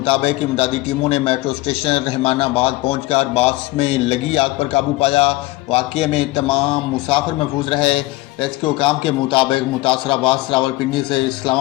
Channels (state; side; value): quieter; right; 19.8 dB